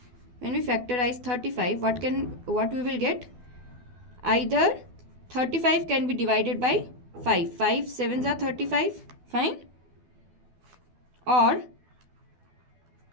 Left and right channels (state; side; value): late; left; 12 ms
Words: what we will get? Either 35 can be divided by 5. 5 sevens are 35. Fine. Or